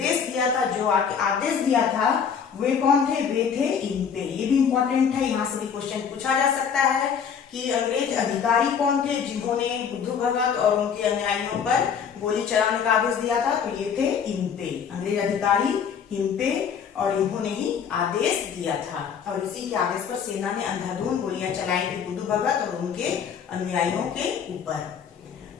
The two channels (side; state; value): right; quieter; 7.2 dB